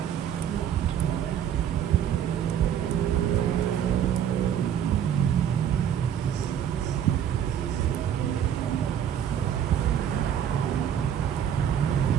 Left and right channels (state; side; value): quieter; left; 9.3 dB